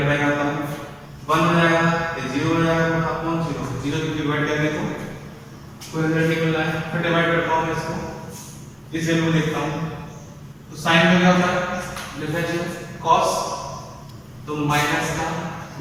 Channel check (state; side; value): identical; both; correlation 1.00